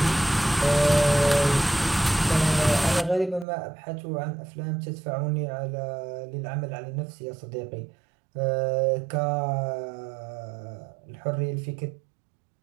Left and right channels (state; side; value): drops out; left; at 3.5 s